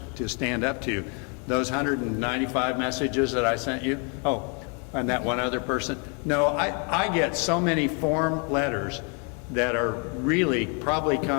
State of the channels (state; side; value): quieter; right; 36.8 dB